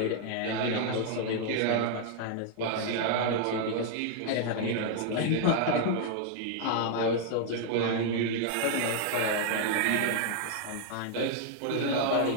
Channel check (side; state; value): both; different; correlation 0.00